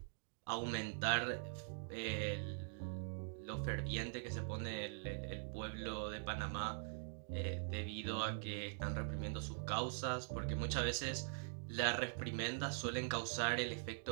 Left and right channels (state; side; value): silent; left; digital silence